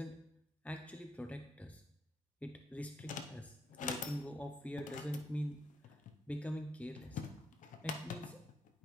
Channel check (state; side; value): normal; both; correlation 0.77